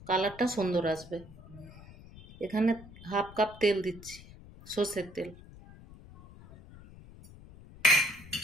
কালারটা সুন্দর আসবে। এখানে হাফ কাপ তেল দিচ্ছি, সর্ষের তেল।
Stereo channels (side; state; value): left; noise; rumble, 19 dB below the sound